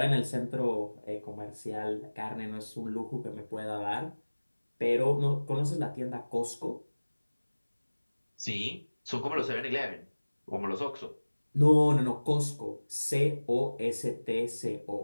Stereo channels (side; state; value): both; inverted; correlation -1.00